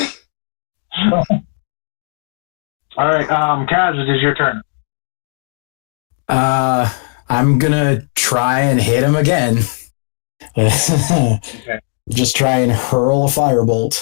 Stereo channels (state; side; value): silent; right; 62 dB below the other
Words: All right, Kaz, it is your turn. I'm gonna try and hit him again. Okay. Just try and hurl a